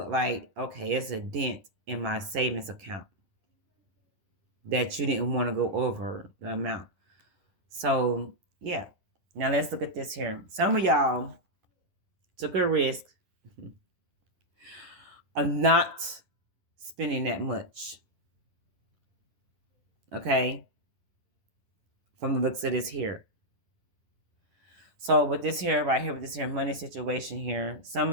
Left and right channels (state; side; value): late; left; 10 ms